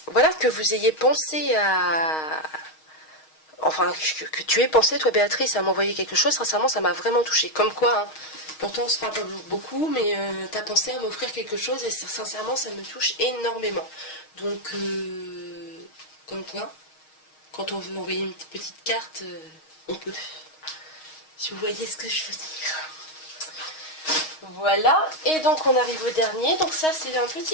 vous ayez pensé à... Enfin, que tu aies pensé, toi Béatrice, à m'envoyer quelque chose, sincèrement, ça m'a vraiment touchée. Comme quoi, hein, pourtant on se parle pas beaucoup, mais t'as pensé à m'offrir quelque chose et sincèrement, ça me touche énormément. Donc, comme quoi, quand on veut m'envoyer une petite carte, on peut. Si vous voyez ce que je veux dire. Voilà, et donc on arrive au dernier. Donc ça, c'est un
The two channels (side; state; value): right; late; 6.4 ms